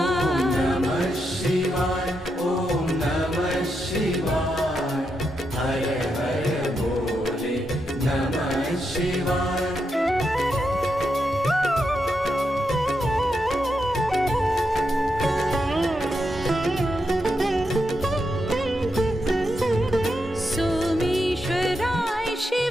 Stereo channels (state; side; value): normal; both; correlation 0.84